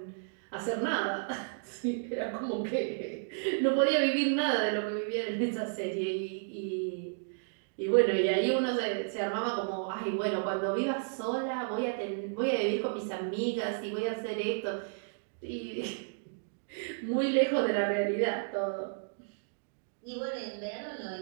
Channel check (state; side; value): silent; left; digital silence